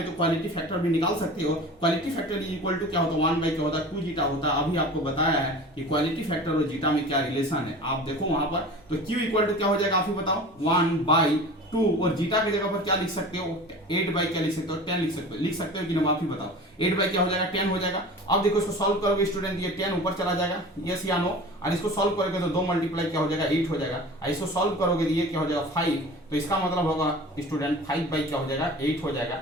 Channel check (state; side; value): normal; both; correlation 0.38